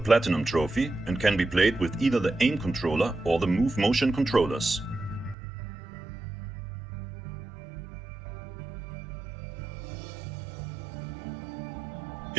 trophy and can be played with either the aim controller or the move motion controllers.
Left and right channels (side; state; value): left; drops out; at 5.4 s